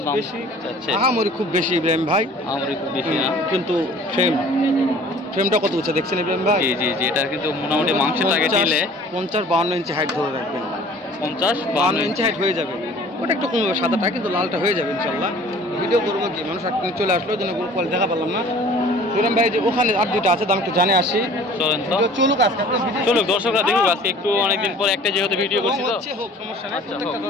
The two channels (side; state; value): both; normal; correlation 0.49